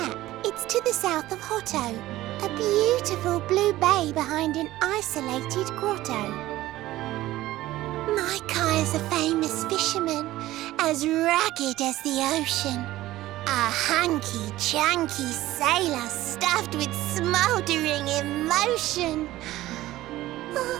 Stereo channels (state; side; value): quieter; left; 16.0 dB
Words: It's to the south of Hotto, a beautiful blue bay behind an isolated grotto. My Kai is a famous fisherman, as rugged as the ocean. A hanky-chanky sailor stuffed with smouldering emotion.